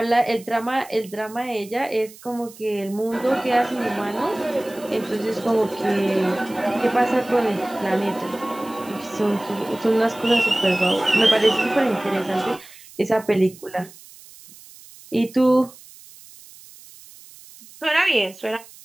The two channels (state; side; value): noise; right; hiss, 21 dB below the sound